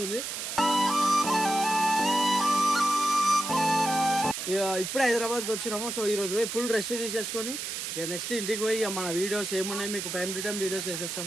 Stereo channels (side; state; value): right; noise; hiss, 5 dB below the sound